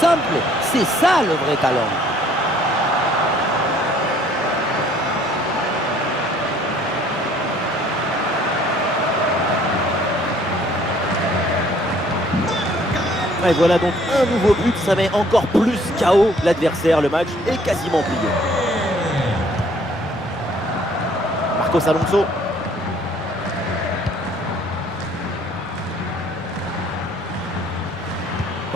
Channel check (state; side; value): normal; both; correlation 0.59